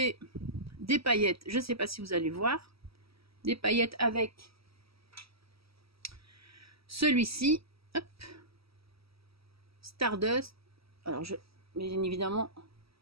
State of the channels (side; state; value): left; late; 0.76 ms